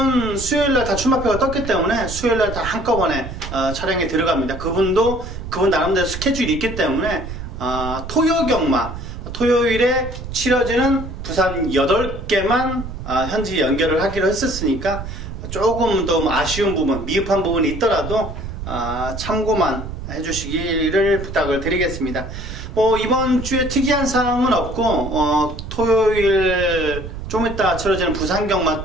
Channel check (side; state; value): right; noise; rumble, 9 dB below the sound